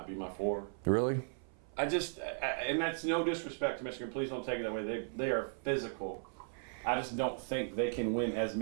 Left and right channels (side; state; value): left; silent; 53 dB below the other